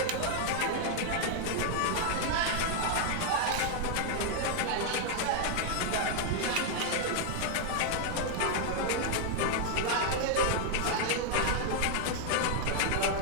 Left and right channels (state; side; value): different; both; correlation 0.00